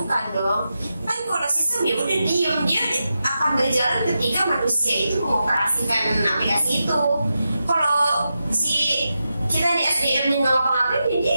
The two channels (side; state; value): both; inverted; correlation -0.89